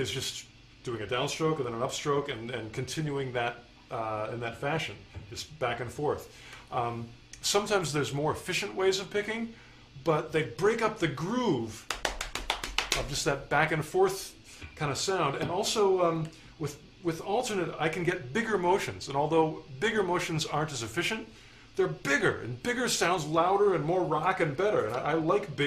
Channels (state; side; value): identical; both; correlation 1.00